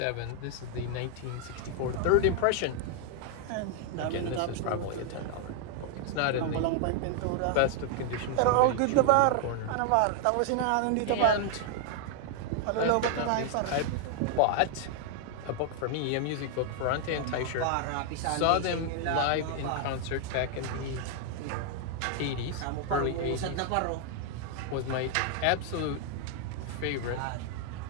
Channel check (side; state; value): both; different; correlation 0.00